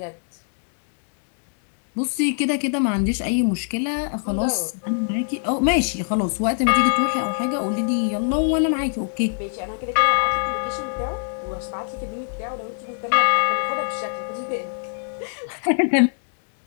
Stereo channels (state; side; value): silent; right; digital silence